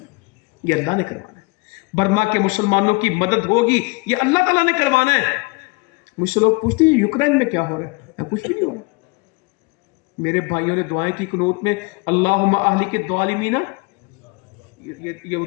یہ اللہ نے کروانا ہے. برما کے مسلمانوں کی مدد ہوگی، یہ اللہ تعالیٰ نے کروانا ہے. مجھ سے لوگ پوچھتے ہیں یوکرین میں کیا ہو رہا ہے؟ کچھ بھی نہیں ہو رہا. میرے بھائیوں نے دعائیں کی قنوت میں، اللہم اہلک الظالمین، یہ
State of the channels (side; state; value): right; quieter; 27.1 dB